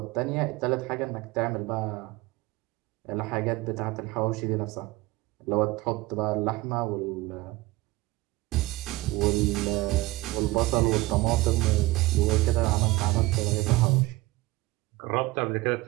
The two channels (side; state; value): left; quieter; 19.8 dB